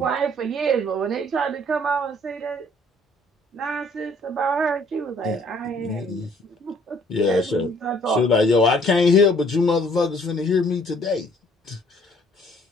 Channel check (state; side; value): normal; both; correlation 0.60